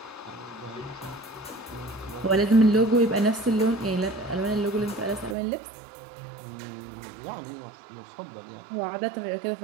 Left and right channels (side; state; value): left; drops out; at 5.4 s